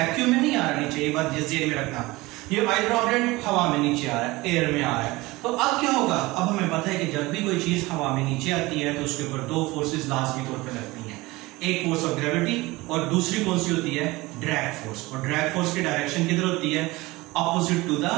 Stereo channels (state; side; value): quieter; left; 21.0 dB